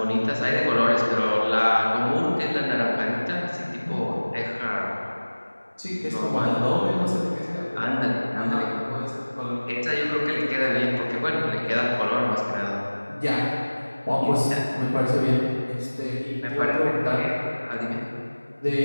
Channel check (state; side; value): inverted; both; correlation -1.00